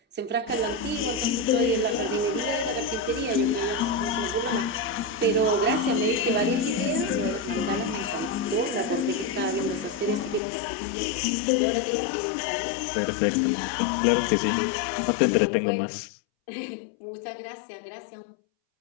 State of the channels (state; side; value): drops out; right; at 10.4 s